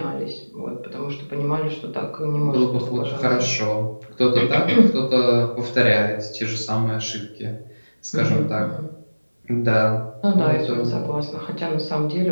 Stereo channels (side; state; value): both; inverted; correlation -1.00